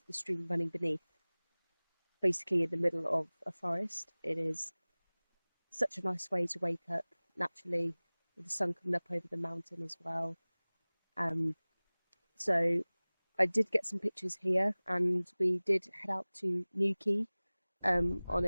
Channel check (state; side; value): inverted; both; correlation -1.00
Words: the stream running beneath. Basically in the middle of a forest. It is such a nice way to wake up naturally with the sun coming up over the mountain as well. So I did get some pictures here and we did head out to Newquay on